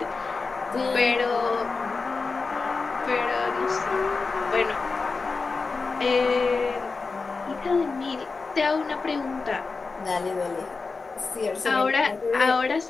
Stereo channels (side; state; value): right; quieter; 4.3 dB